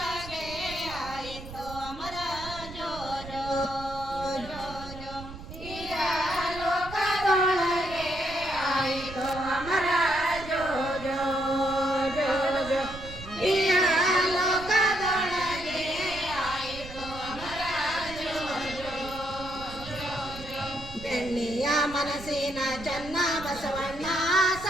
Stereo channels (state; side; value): noise; right; rumble, 13 dB below the sound